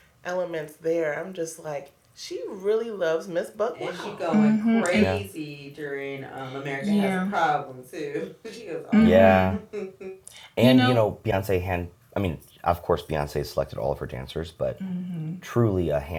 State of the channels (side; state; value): both; identical; correlation 1.00